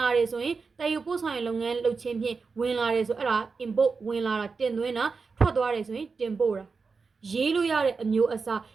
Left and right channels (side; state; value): left; quieter; 4.7 dB